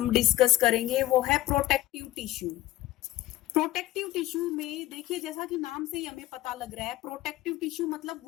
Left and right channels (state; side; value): quieter; right; 15.8 dB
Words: डिस्कस करेंगे वो है प्रोटेक्टिव टिश्यू। प्रोटेक्टिव टिश्यू में देखिए, जैसा कि नाम से ही हमें पता लग रहा है, प्रोटेक्टिव टिश्यू मतलब